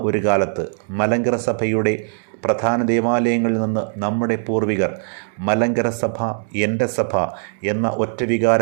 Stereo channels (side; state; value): left; silent; digital silence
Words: ഒരു കാലത്ത് മലങ്കര സഭയുടെ പ്രധാന ദേവാലയങ്ങളിൽ നിന്ന് നമ്മുടെ പൂർവികർ മലങ്കര സഭ എൻ്റെ സഭ എന്ന ഒറ്റ